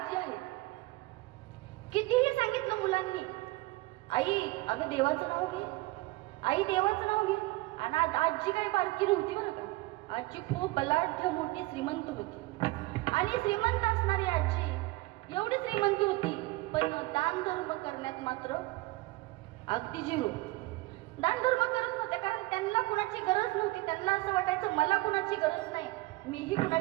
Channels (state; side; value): quieter; left; 20.9 dB